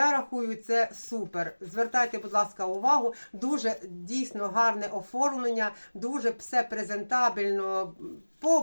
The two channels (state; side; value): inverted; both; correlation -1.00